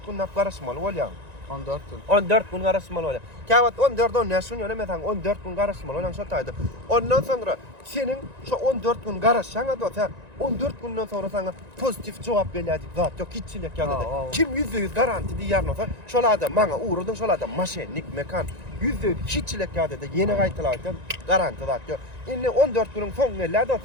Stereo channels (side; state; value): left; late; 1.9 ms